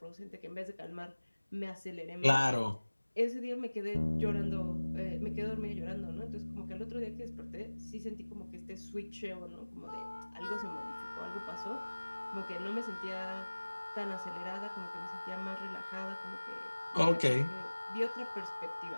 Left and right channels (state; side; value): inverted; both; correlation -1.00